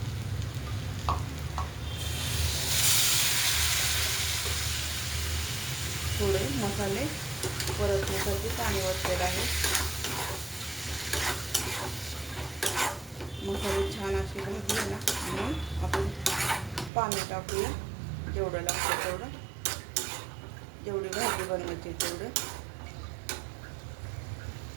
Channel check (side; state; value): left; drops out; at 16.9 s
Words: थोडे मसाले परतण्यासाठी पाणी ओतलेलं आहे. मसाले छान असे भाजले ना म्हणून आपण पाणी टाकूया. जेवढं लागतं तेवढं. जेवढी भाजी बनवायची तेवढं.